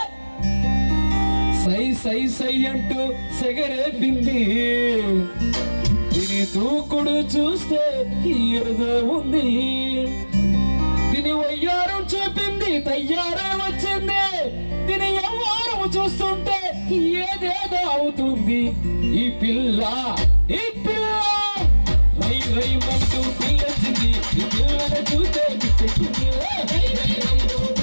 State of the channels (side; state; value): both; inverted; correlation -1.00